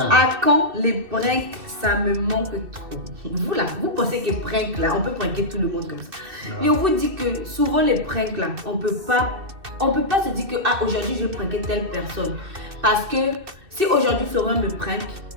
quand les pranks ça me manque trop. Vous là, vous pensez que prank là, on peut pranker tout le monde comme ça. Et on vous dit que souvent les pranks là, on peut pas se dire que aujourd'hui je vais pranker telle personne. Parce que si aujourd'hui Florian me prank,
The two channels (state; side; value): late; left; 2.6 ms